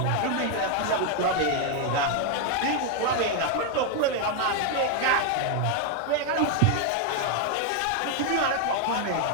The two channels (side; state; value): both; different; correlation 0.01